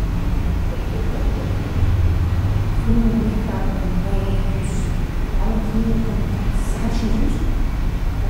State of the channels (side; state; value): both; identical; correlation 1.00